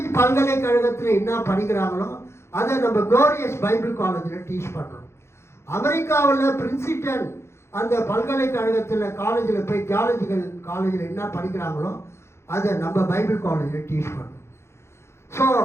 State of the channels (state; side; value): late; right; 0.13 ms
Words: பல்கலைக்கழகத்தில் என்ன படிக்கிறாங்களோ அதை நம்ம க்ளோரியஸ் பைபிள் காலேஜில் டீச் பண்ணுறோம். அமெரிக்காவில் பிரின்சிட்டன் அந்த பல்கலைக்கழகத்தில் காலேஜில் போய் தியாலஜிக்கல் காலேஜில் என்ன படிக்கிறாங்களோ அதை நம்ம பைபிள் காலேஜில் டீச் பண்ணுறோம். ஸோ